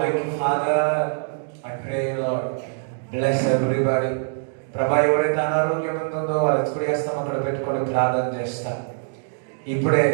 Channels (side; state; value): left; silent; digital silence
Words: you, Father. I pray, Lord, bless everybody. ప్రభా, ఎవరైతే అనారోగ్యం ఉంటుందో వాళ్ళు ఎత్తుకుడి వేస్తాం అక్కడ పెట్టుకొని ప్రార్థన చేస్తాం. ఇప్పుడే